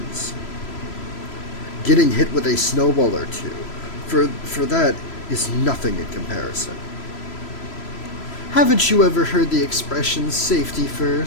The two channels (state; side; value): late; right; 3.0 ms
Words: getting hit with a snowball or two, for that is nothing in comparison. Haven't you ever heard the expression safety